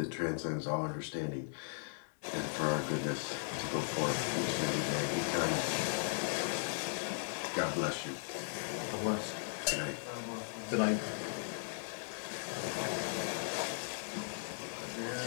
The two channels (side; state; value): right; silent; 53 dB below the other